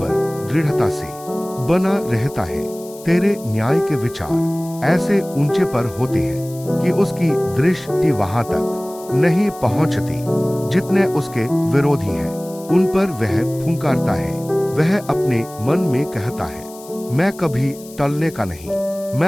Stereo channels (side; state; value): left; noise; hiss, 19 dB below the sound